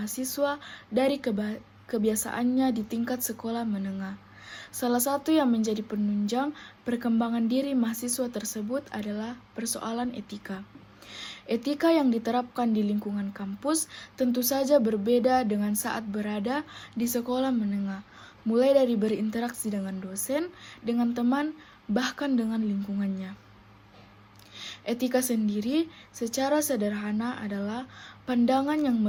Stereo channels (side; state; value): both; identical; correlation 1.00